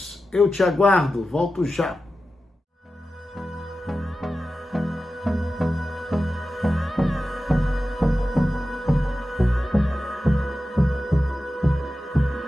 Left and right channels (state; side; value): normal; both; correlation 0.93